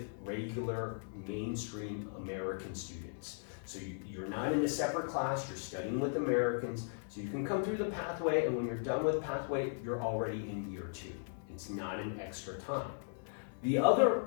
regular mainstream American students. So you're not in a separate class, you're studying with Americans, so you can come through the Pathway, and when you're done with Pathway, you're already in year 2. It's not an extra time. The other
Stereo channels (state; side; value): silent; right; 53 dB below the other